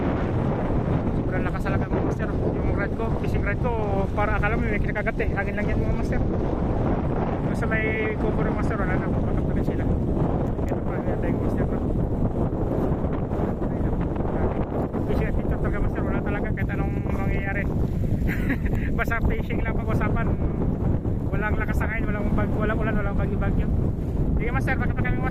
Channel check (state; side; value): identical; both; correlation 1.00